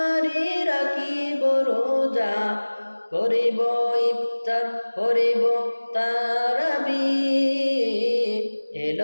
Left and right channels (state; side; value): inverted; both; correlation -1.00